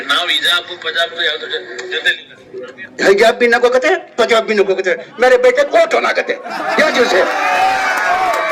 ನಾವು ಹಿಜಾಬ್ ಪಜಾಬ್ ಯಾವ್ದು ಜೊತೆ हिजाब भी नको कहते, पंजाब भी नको कहते, मेरे बेटे कोट होना कहते, क्या चीज है।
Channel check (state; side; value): identical; both; correlation 1.00